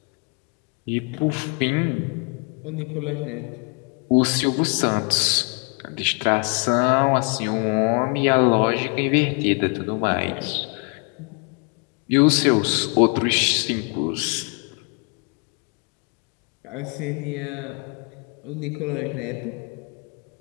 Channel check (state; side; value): quieter; right; 34.8 dB